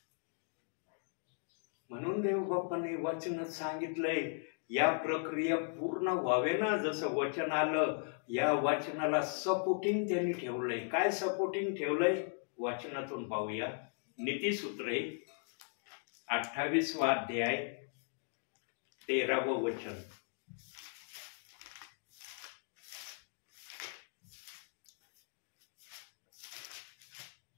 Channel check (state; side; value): silent; right; 53 dB below the other